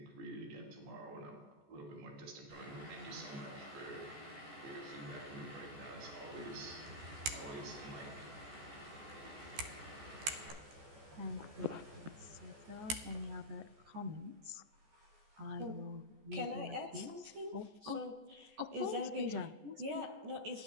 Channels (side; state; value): left; late; 14 ms